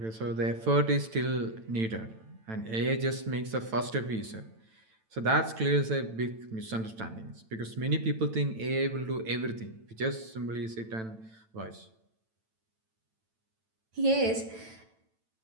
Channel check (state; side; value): late; left; 9.0 ms